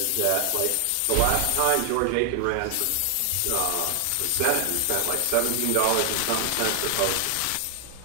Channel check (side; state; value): both; different; correlation 0.00